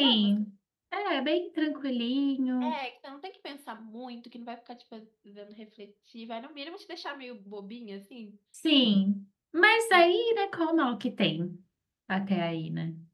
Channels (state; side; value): identical; both; correlation 1.00